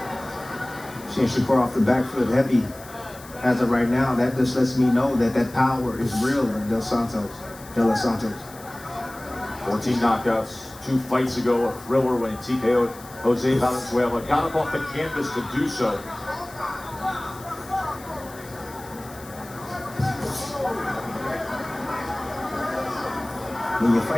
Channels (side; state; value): left; noise; hiss, 19 dB below the sound